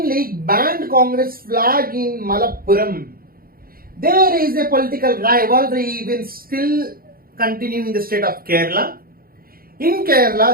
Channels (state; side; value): late; left; 0.43 ms